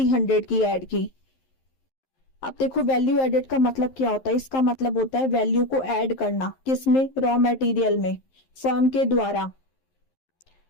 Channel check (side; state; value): right; late; 11 ms